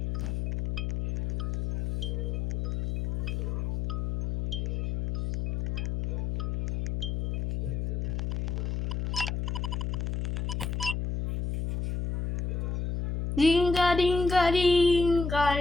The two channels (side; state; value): left; noise; hum, 2 dB below the sound